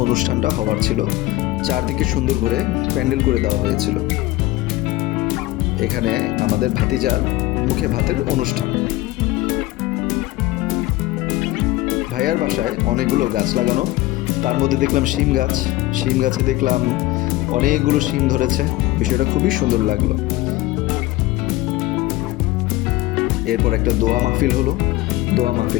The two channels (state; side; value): quieter; right; 18.0 dB